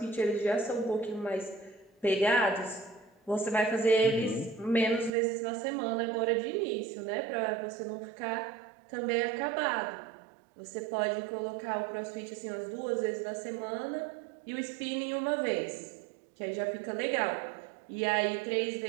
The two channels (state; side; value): drops out; left; at 5.1 s